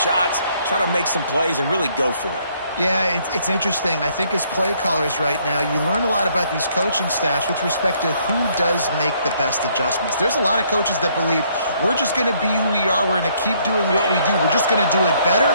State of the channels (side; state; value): both; inverted; correlation -0.67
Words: try to make some plays, and really go for it? Yeah, it's interesting. I think as play callers right now, you learn a lot about these coaching staffs with respect to who does make the best adjustments. There's a lot of coaches that believe we're just going to be who we are. We're going to keep doing what we do. We're just going to do it better.